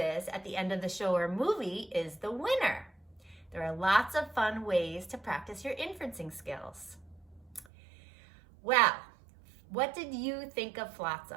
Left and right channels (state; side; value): drops out; left; at 7.7 s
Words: at the end of the show or movie is the winner. There are lots of fun ways to practice your inferencing skills. Well, what did you think of